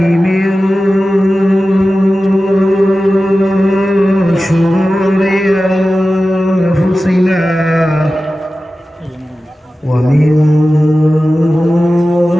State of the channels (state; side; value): normal; both; correlation 0.95